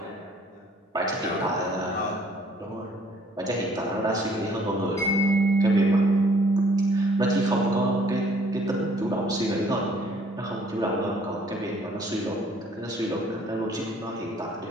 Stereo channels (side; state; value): both; normal; correlation 0.60